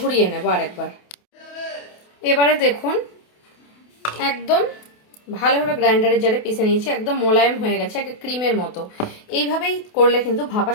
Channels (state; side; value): late; right; 28 ms